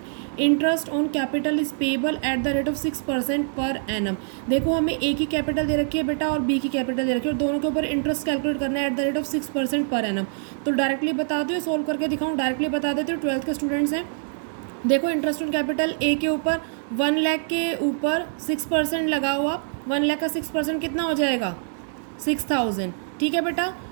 Interest on capital is payable at the rate of 6% per annum. देखो हमें A की कैपिटल दे रखी है बेटा और B की कैपिटल दे रखी है और दोनों के ऊपर इंटरेस्ट कैलकुलेट करना है at the rate of 6% per annum. तो डायरेक्टली बता दो, सोल्व करके दिखाऊँ? डायरेक्टली बता देते हो, 12th के स्टूडेंट्स हैं। देखो इंटरेस्ट ऑन कैपिटल ए के ऊपर 1 लाख के ऊपर 6% लगाओ आप। 1 लाख का 6% कितना हो जाएगा? 6,000। ठीक है बेटा।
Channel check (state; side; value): silent; left; digital silence